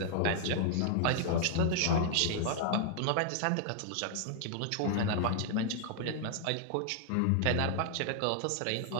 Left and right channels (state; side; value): different; both; correlation -0.01